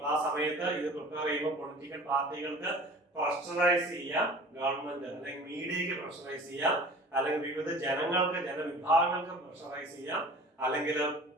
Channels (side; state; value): both; normal; correlation 0.44